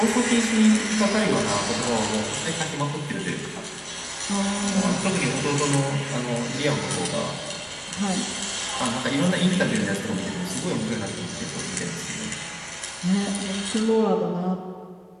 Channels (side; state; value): both; identical; correlation 1.00